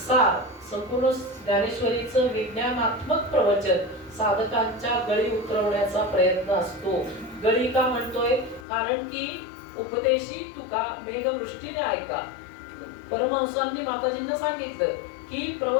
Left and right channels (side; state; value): right; drops out; at 8.7 s